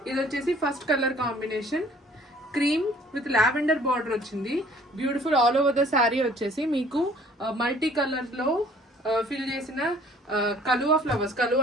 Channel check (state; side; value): normal; both; correlation 0.55